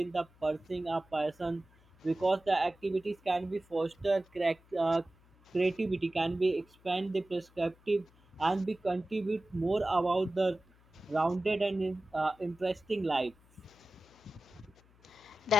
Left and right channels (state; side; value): noise; left; hum, 29 dB below the sound